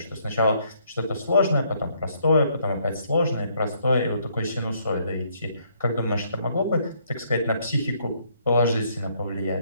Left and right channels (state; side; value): inverted; both; correlation -0.69